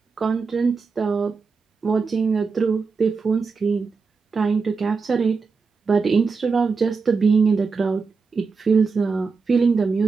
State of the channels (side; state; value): left; quieter; 4.8 dB